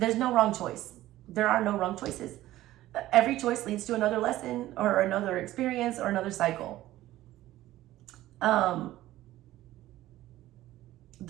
no wrong choice. There are no wrong choices. Every choice leads to another lesson or another experience or another cycle.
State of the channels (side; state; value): left; quieter; 15.2 dB